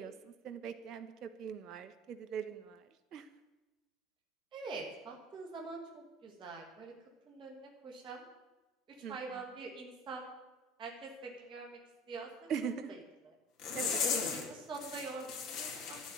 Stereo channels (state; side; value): normal; both; correlation 0.40